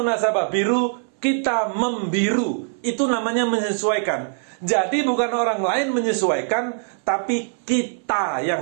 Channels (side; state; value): left; silent; 60 dB below the other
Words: nasabah biru, kita membiru. Itu namanya menyesuaikan. Jadi bukan orang lain menyesuaikan, tapi kita yang